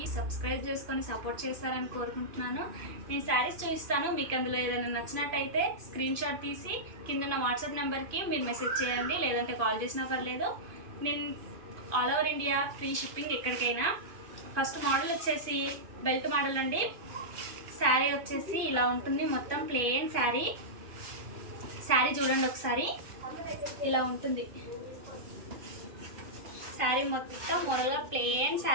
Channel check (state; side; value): late; left; 2.5 ms